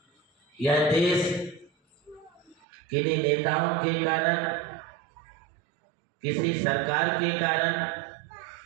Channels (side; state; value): left; drops out; at 2.6 s